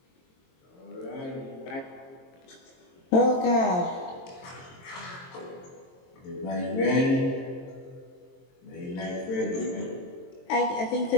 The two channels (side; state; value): right; late; 22 ms